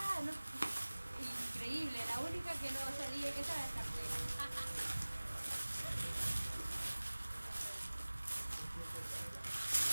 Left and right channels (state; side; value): inverted; both; correlation -1.00